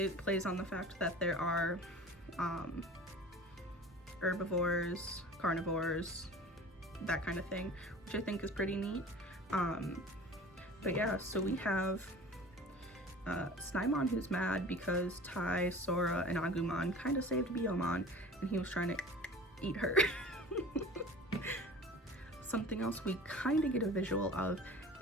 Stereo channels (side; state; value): both; normal; correlation 0.41